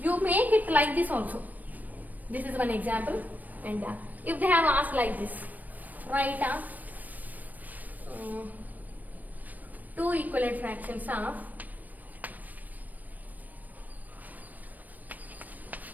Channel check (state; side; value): late; left; 0.082 ms